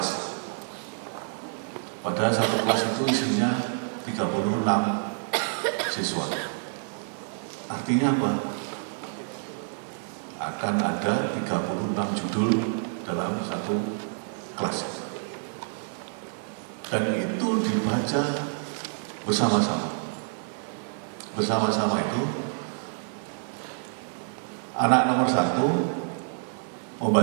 Padahal satu kelas itu isinya 36 siswa. Artinya apa? Akan ada 36 judul dalam satu kelas. Dan itu dibaca bersama-sama. Bersama-sama itu anak nomor 1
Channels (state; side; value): silent; left; 59 dB below the other